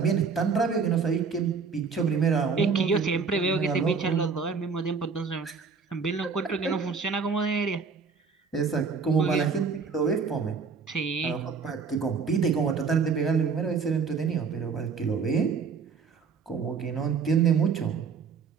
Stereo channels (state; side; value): quieter; left; 5.4 dB